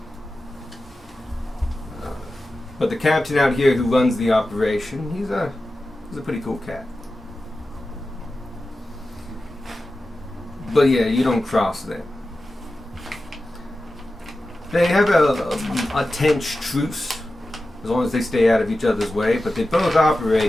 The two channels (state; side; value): normal; both; correlation 0.93